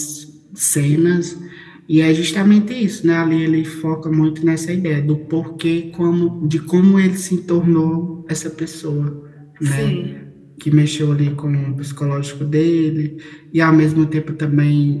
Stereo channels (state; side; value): identical; both; correlation 1.00